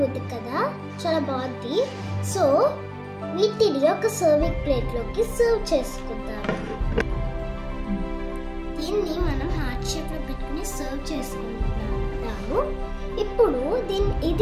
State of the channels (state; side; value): identical; both; correlation 1.00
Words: ఉంది కదా, చాలా బాగుంది. సో వీటిని ఒక సర్వింగ్ ప్లేట్లోకి సర్వ్ చేసుకుందాం. దీన్ని మనం హార్ట్ షేప్లో పెట్టుకుని సర్వ్ చేసుకుంటాము. ఇప్పుడు